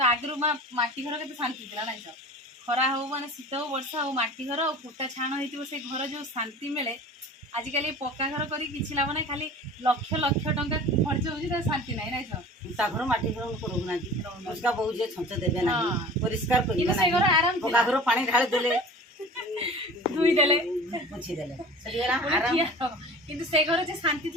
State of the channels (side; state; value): both; normal; correlation 0.40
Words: आगु माटी घर के शांति थी ना खरा हो माने शीत हो वर्षा हो माटी घर और फुटा छाण हो से घर जो शांति मिले आजिकल पक्का घर कर लाभ ना खाली लक्ष लक्ष टंका खर्च हो शांति ना ना घर माटी घर रोना बहुत छंच देवे ना परिष्कार कर आराम पक्का घर पानी ढाली देले धुई देले पोछी देले किंतु से घर जे शांति